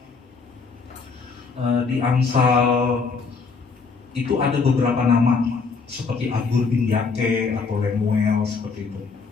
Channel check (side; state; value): right; quieter; 4.8 dB